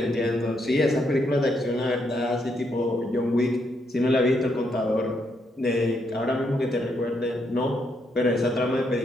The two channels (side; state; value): both; normal; correlation 0.77